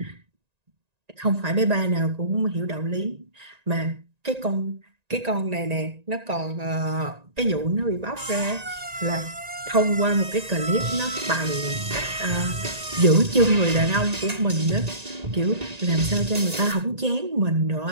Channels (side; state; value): left; late; 1.9 ms